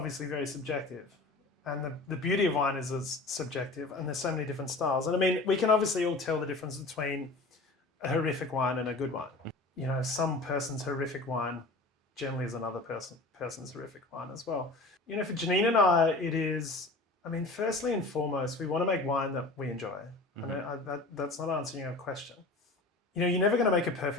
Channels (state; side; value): quieter; right; 3.1 dB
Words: very subjective. And the beauty of wine is it's subjective, and there's so many different styles. And I mean, we can obviously all tell the difference between a horrific wine and a good wine. You know, some person's horrific wine generally is another person's horrific wine as well. You know, for Chenin and I, it is, I mean, firstly and foremost, we want to make wine that we enjoy. And that's not answering your question. You know, you're never going to make a